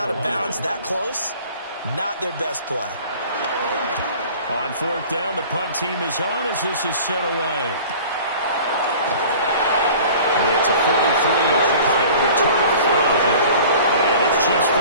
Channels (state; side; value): inverted; both; correlation -0.45